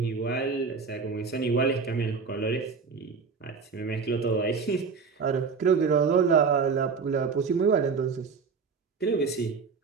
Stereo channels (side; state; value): left; quieter; 5.2 dB